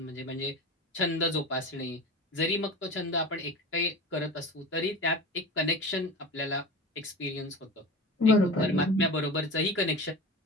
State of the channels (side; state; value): both; normal; correlation 0.32